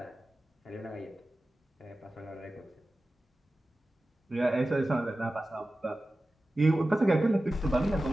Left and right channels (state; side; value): normal; both; correlation 0.95